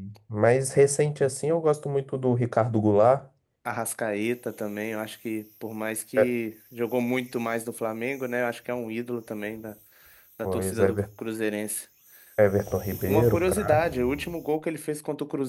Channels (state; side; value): identical; both; correlation 1.00